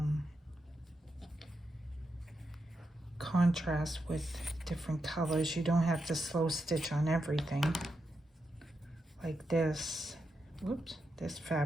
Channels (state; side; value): normal; both; correlation 0.86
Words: contrast with different colors. You don't have to slow stitch on everything like this. Whoops, this